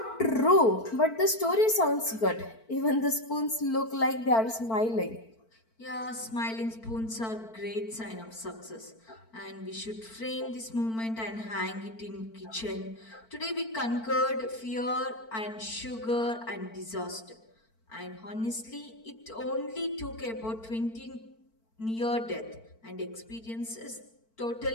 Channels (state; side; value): late; right; 4.5 ms